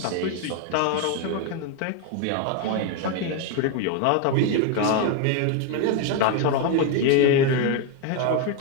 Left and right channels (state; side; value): different; both; correlation 0.01